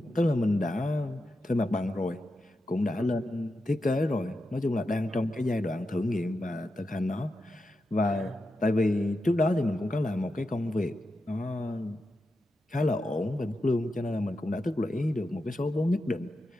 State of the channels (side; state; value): both; normal; correlation 0.88